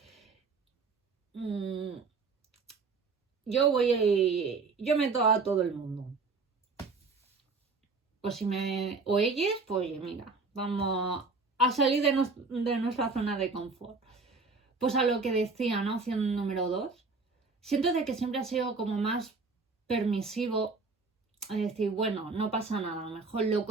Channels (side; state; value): left; quieter; 4.2 dB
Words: Yo meto a todo el mundo. Pues o ellos, pues mira, vamos a salir de nuestra zona de confort. Pues a lo que decía, ¿no? Opción número 2. Siento de que siempre ha sido como más permisivo a decir, bueno, no pasa nada, a lo mejor